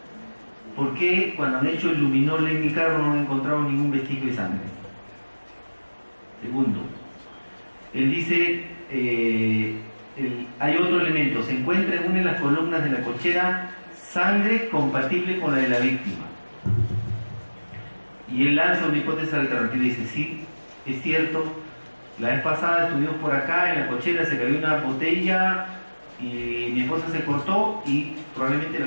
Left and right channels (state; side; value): inverted; both; correlation -1.00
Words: ¿por qué cuando han hecho el luminol en mi carro no han encontrado ningún vestigio de sangre? Segundo, él dice, hay otro elemento, se encuentra en una de las columnas de la cochera sangre compatible con la de la víctima. Y él lanza una hipótesis alternativa y dice, sí, es cierto, la vez pasada estuvimos por acá, en la cochera se cayó una botella y mi esposa se cortó y probablemente